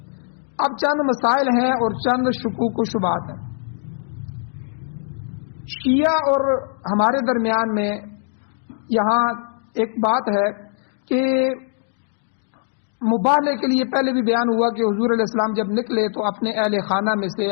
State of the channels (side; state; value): right; silent; digital silence